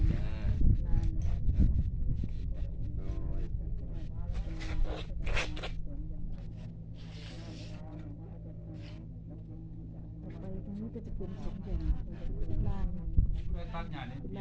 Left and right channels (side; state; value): both; identical; correlation 1.00